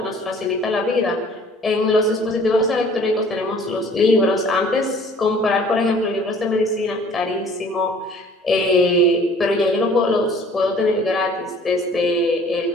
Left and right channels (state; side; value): normal; both; correlation 0.53